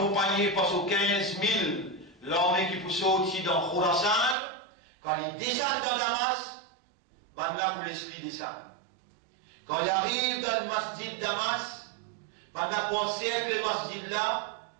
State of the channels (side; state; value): left; drops out; at 4.4 s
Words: par ses 15 000 l'armée qui peut sortir dans Khurasan, quand il descend dans Damas, ben là pour l'esprit descend. Quand il arrive dans le masjid Damas, pendant qu'on siècle le masjid là,